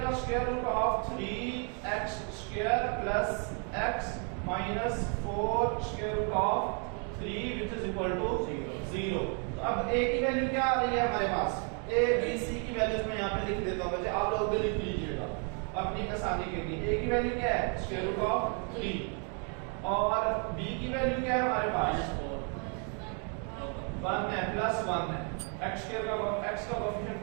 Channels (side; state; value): left; quieter; 40.0 dB